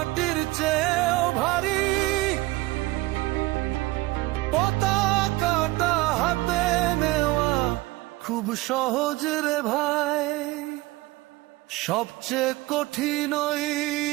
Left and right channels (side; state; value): left; quieter; 20.2 dB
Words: চেয়েও ভারী। পতাকাটা হাতে নেওয়া খুব সহজ রে ভাই, সবচেয়ে কঠিন ওই